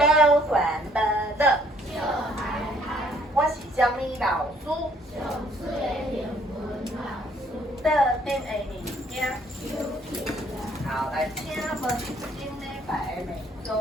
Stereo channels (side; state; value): both; normal; correlation 0.64